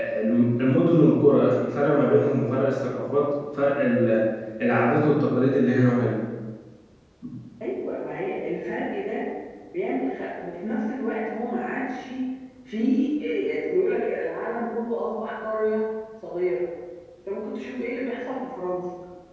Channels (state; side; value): identical; both; correlation 1.00